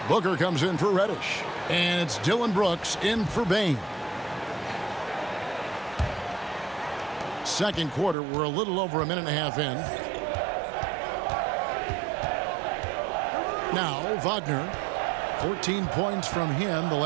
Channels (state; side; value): drops out; left; at 8.2 s